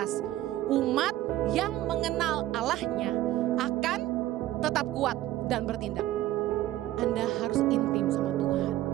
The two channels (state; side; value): quieter; left; 14.8 dB